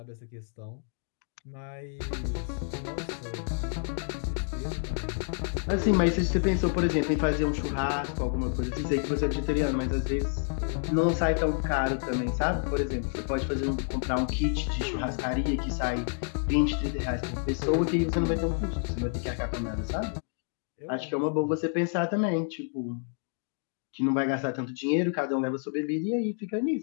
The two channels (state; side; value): silent; right; 58 dB below the other